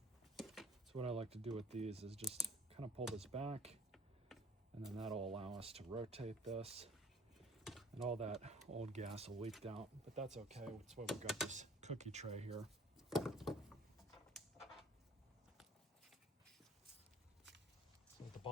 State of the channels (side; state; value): both; normal; correlation 0.52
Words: So what I like to do with these is just kind of pull this back, and then that'll allow us to rotate this, and all that old gas will leak out, but that's okay. That's why we've got this cookie tray here. So at the